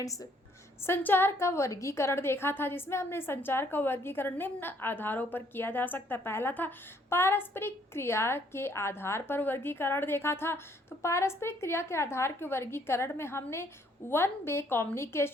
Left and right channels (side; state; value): both; normal; correlation 0.65